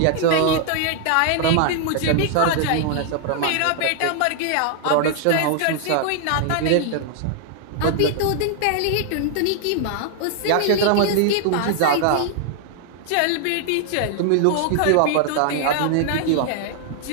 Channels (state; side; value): different; both; correlation 0.00